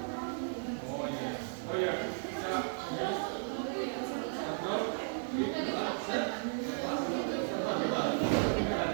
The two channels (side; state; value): left; silent; digital silence